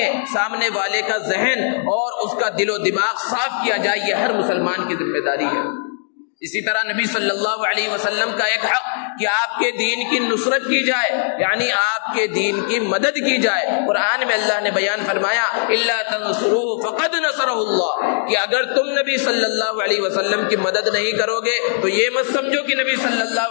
ہیں. سامنے والے کا ذہن اور اس کا دل و دماغ صاف کیا جائے، یہ ہر مسلمان کی ذمہ داری ہے. اسی طرح نبی صلی اللہ علیہ وسلم کا ایک حق کہ آپ کے دین کی نصرت کی جائے، یعنی آپ کے دین کی مدد کی جائے. قرآن میں اللہ نے بیان فرمایا الا تنصروه فقد نصره اللہ، کہ اگر تم نبی صلی اللہ علیہ وسلم کی مدد نہیں کرو گے تو یہ مت سمجھو کہ نبی صلی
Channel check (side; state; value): right; silent; digital silence